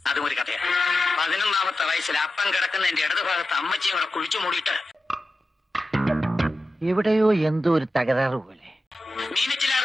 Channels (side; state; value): both; normal; correlation 0.92